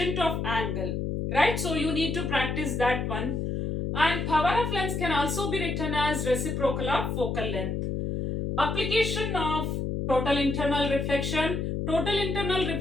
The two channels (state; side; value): noise; left; hum, 2 dB below the sound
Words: of angle, right? So you need to practice that one. And power of lens can also be written as reciprocal of focal length. Application of total internal reflection. Total internal